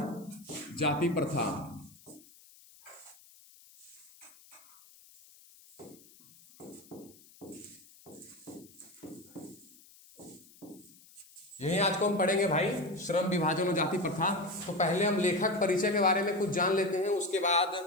जाति प्रथा। यही आज को हम पढ़ेंगे भाई, श्रम विभाजन और जाति प्रथा। तो पहले हम लेखक परिचय के बारे में कुछ जान लेते हैं, उसके बाद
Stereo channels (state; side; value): noise; left; hiss, 24 dB below the sound